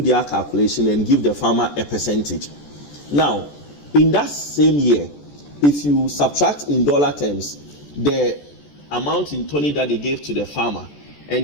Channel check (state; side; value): late; right; 14 ms